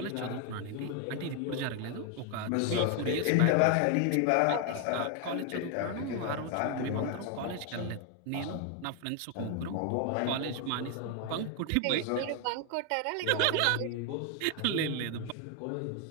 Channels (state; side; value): different; both; correlation 0.01